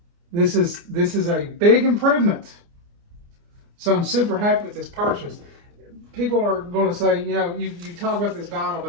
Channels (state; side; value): late; left; 29 ms